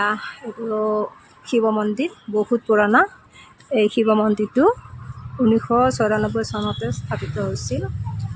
শিৱ মন্দিৰ, বহুত পুৰণা। এই শিৱ মন্দিৰটো 1994 চনতে স্থাপিত হৈছিল।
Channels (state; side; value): identical; both; correlation 1.00